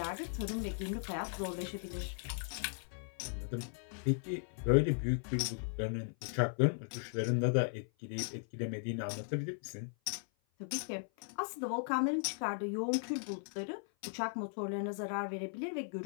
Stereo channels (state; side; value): silent; right; 53 dB below the other